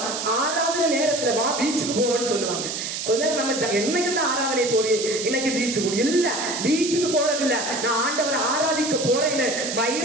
ஆராதனை நேரத்துல வா பீச்சுக்கு போவோம்னு சொல்லுவாங்க. கொஞ்ச நேரம் நம்ம என்னைக்கு இந்த ஆராதனை போறீ, இன்னைக்கு பீச்சுக்கு இல்ல, பீச்சுக்கு போறது இல்ல, நான் ஆண்டவரை ஆராதிக்க போறேன்னு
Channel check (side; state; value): right; noise; hiss, 4 dB below the sound